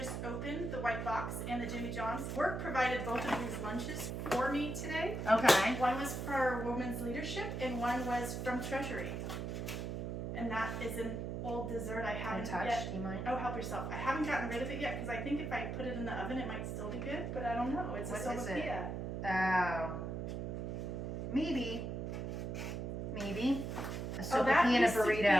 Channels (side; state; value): right; noise; hum, 4 dB below the sound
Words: opened, the white box, and the Jimmy John's. Work provided both of these lunches for me today. Okay. One was for Women's Leadership, and one was from Treasury. And that is an old dessert I haven't Untouched, yet. do you mind? Oh, help yourself. I haven't gotten rid of it yet because I think if I put it in the oven, it might still be good, but I don't know. It's What a is it? sopapilla. Oh. Maybe. Maybe. A Oh, that sopapilla and a used to be a